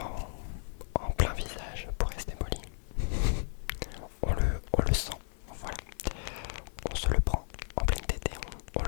en plein visage, pour rester poli, on le sent, voilà. On se le prend en pleine tête et on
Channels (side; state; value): right; silent; 55 dB below the other